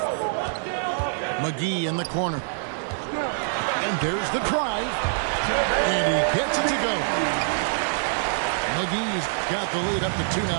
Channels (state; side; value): silent; left; 55 dB below the other